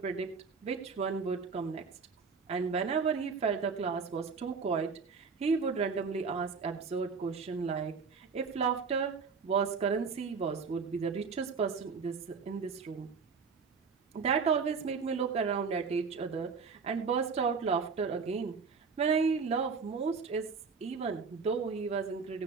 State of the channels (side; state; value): left; quieter; 5.3 dB